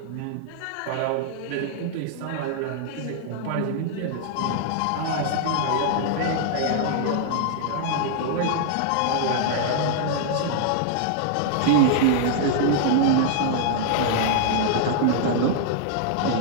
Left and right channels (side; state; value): both; different; correlation -0.01